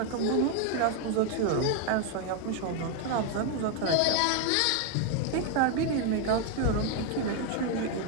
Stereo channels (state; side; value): different; both; correlation 0.01